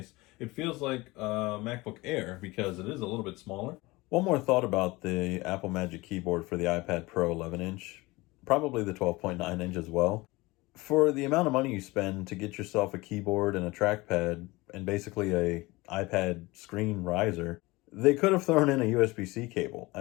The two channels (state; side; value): quieter; right; 21.9 dB